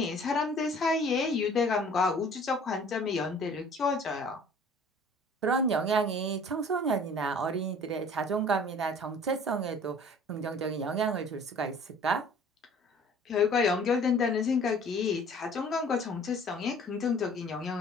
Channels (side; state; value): both; normal; correlation 0.51